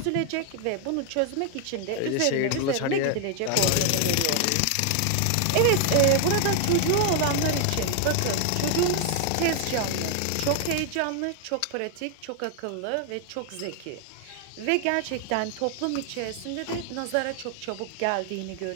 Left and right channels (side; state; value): both; different; correlation 0.00